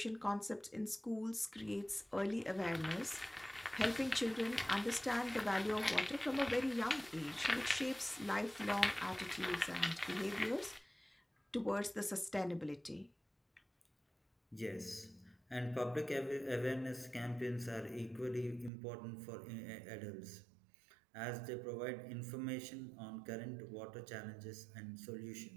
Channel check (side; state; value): left; drops out; at 18.7 s